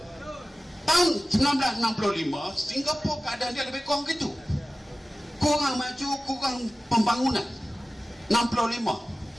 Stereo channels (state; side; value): normal; both; correlation 0.96